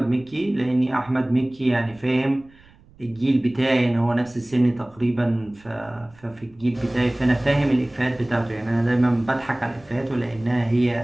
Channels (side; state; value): right; noise; rumble, 27 dB below the sound